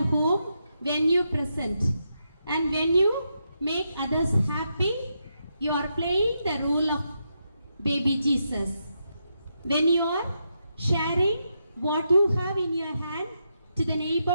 home when you present. And when you make others happy, you are playing the role of baby Jesus. When you are sharing what you have in your hand to the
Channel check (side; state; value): both; inverted; correlation -0.83